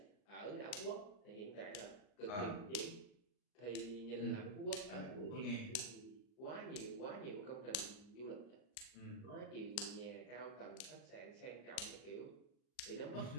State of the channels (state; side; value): late; right; 39 ms